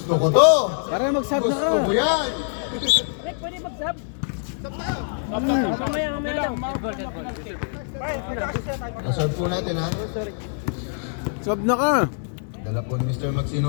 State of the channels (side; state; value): right; silent; digital silence